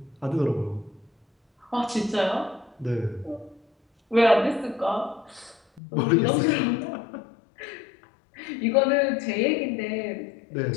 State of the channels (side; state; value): right; drops out; at 5.8 s